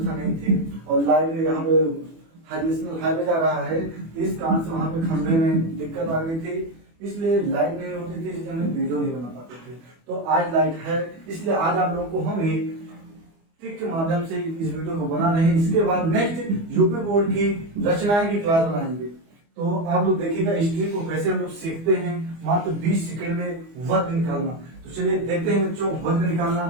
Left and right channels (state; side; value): late; left; 24 ms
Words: नहीं थी और लाइट यहाँ पे नेशनल हाईवे जा रहा है, इस कारण से वहाँ पे खंभे में दिक्कत आ गई थी, इसलिए लाइट नहीं होती थी, इसलिए हम वीडियो नहीं बना पाते थे। तो आज लाइट है, इसलिए आज आप लोगों को हम ट्रिक के माध्यम से इस वीडियो को बना रहे हैं। इसके बाद नेक्स्ट यूपी बोर्ड की रचनाएं की क्लास बनाएंगे। तो आप लोग देखिएगा इस ट्रिक को कैसे हम लोग सीखते हैं, मात्र 20 सेकंड में वर्ग निकालना। तो चलिए देखते हैं बच्चों, वर्ग